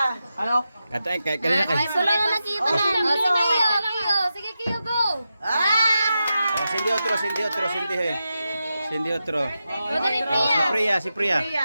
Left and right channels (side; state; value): both; inverted; correlation -0.90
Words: Ano? Kanina kay. Ay, solo na nakita na. Sige, Kiyo. Sige, Kiyo, go. Oh, sindi otro. Sindi otro. O, dali, Si Priya.